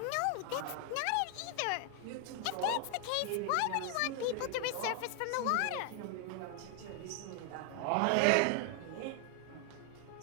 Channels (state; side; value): different; both; correlation 0.00